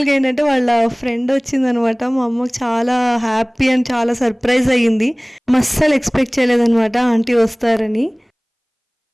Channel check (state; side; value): identical; both; correlation 1.00